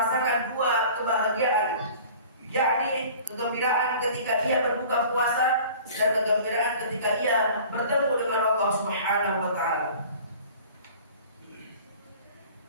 dua kebahagiaan, yakni kegembiraan ketika ia berbuka puasa dan kegembiraan ketika ia bertemu dengan Allah Subhanahu wa taala.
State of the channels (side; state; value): both; inverted; correlation -0.45